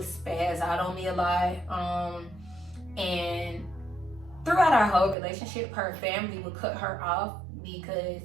spaz out on me a lot. And throughout our whole relationship, her family would cut her off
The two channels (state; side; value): drops out; left; at 5.2 s